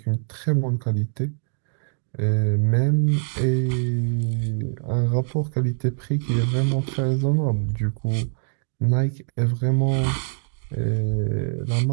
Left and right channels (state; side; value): silent; left; digital silence